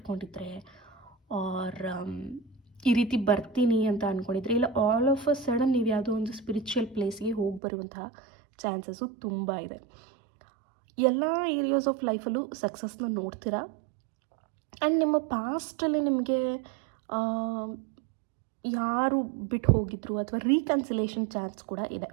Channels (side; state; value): left; drops out; at 7.6 s